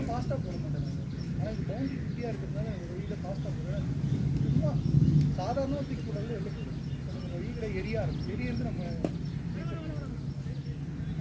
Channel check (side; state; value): both; identical; correlation 1.00